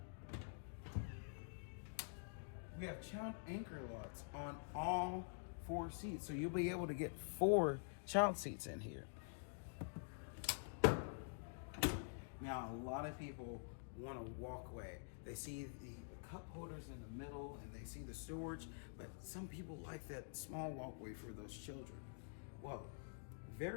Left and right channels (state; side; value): silent; right; digital silence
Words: we have child anchor locks on all 4 seats. So you'll be able to get 4 child seats in here. Now, a lot of people want a walkway. They see the cup holders in the middle and they see the storage, but some people like that small walkway for those children. Well,